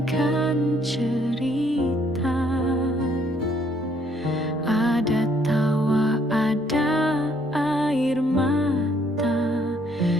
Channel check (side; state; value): both; normal; correlation 0.66